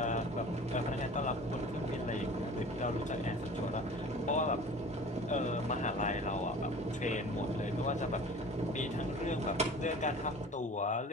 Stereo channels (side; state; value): both; normal; correlation 0.42